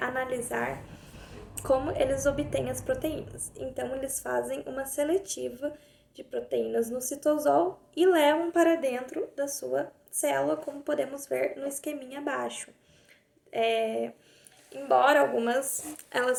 analisar como eles obtêm as proteínas. Então, eles fazem uma seletiva de proteínas no citosol e levam para dentro da sua célula, como podemos ver no esqueminha abaixo. Embora algumas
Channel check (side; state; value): both; identical; correlation 1.00